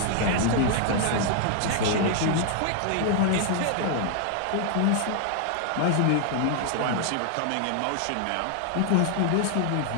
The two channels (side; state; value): both; different; correlation 0.00